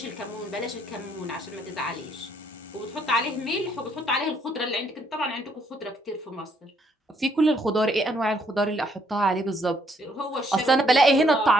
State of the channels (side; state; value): both; normal; correlation 0.69